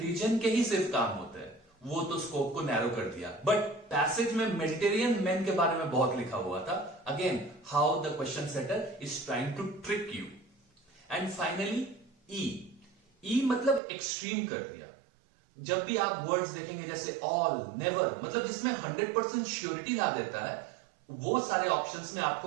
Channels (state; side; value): drops out; left; at 13.8 s